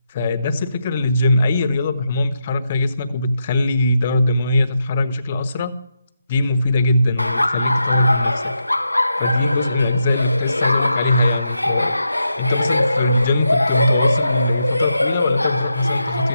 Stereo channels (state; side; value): inverted; both; correlation -0.84